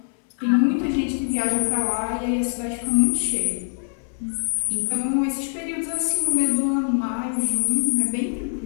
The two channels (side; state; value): right; silent; 63 dB below the other